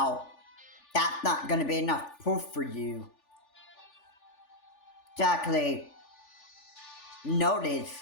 that's not going to be enough proof for you to actually notice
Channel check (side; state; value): right; late; 3.4 ms